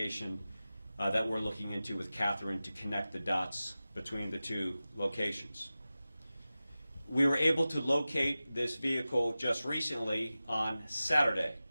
that we're looking into with Katherine to connect the dots between the 2 locations. We were able to locate this vehicle just recently on Saturday,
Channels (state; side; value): inverted; both; correlation -0.95